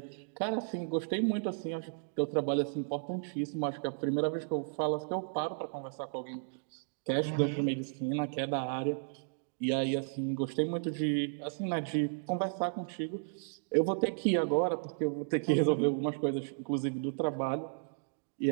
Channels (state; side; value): silent; left; digital silence